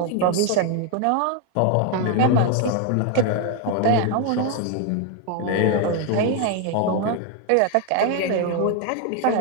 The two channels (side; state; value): both; different; correlation 0.01